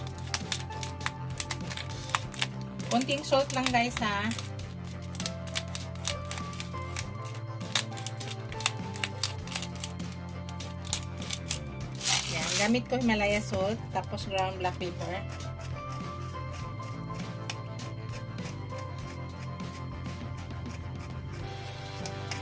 Konting salt lang guys ha. Yan, gamit ko Himalaya salt, tapos ground black pepper.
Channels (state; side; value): identical; both; correlation 1.00